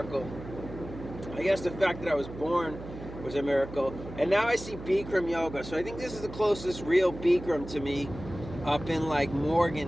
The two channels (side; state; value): right; noise; hum, 12 dB below the sound